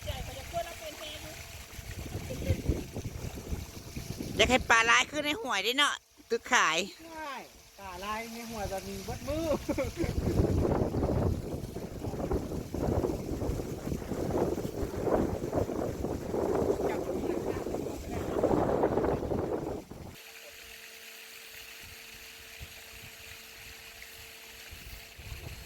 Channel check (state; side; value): identical; both; correlation 1.00